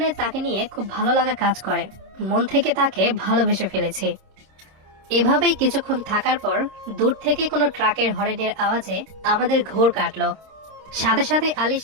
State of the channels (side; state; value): left; late; 26 ms